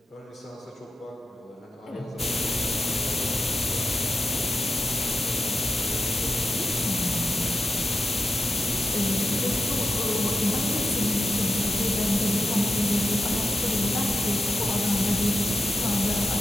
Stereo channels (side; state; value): both; normal; correlation 0.86